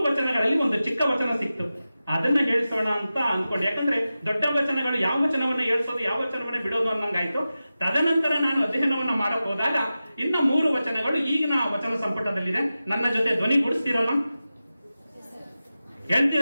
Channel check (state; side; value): inverted; both; correlation -0.94